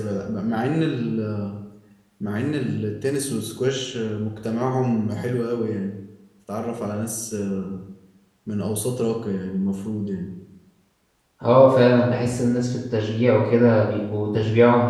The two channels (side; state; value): both; identical; correlation 1.00